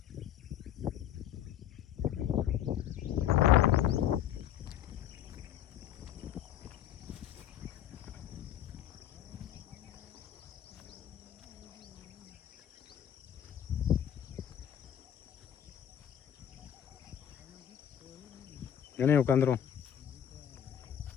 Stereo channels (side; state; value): right; quieter; 10.3 dB